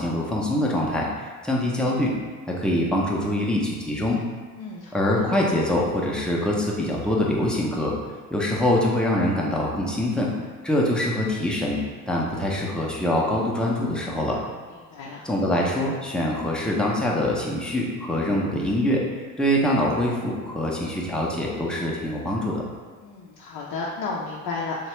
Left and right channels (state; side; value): normal; both; correlation 0.49